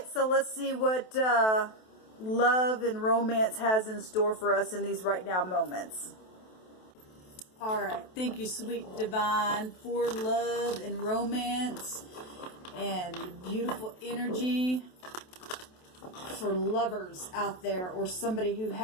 so let's see what love and romance has in store for us in these right now moments. All right, thank you, sweet divine, for love and romance and beautiful energy for lovers out there, or somebody who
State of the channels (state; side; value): late; right; 27 ms